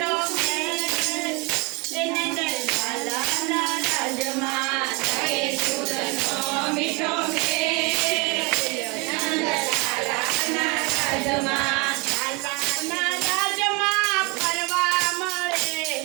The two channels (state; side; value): quieter; left; 26.6 dB